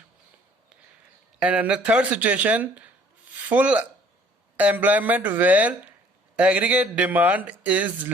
And in the third situation, full employment where aggregate demand is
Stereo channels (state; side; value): normal; both; correlation 0.57